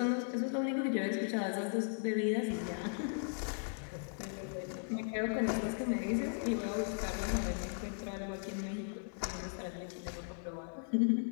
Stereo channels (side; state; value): right; silent; 53 dB below the other